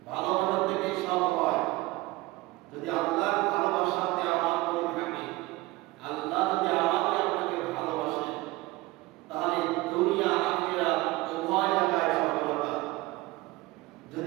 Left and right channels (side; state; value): left; quieter; 20.2 dB